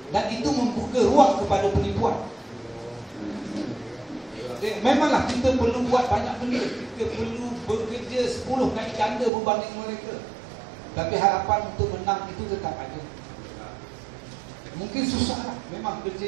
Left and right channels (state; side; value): drops out; left; at 9.3 s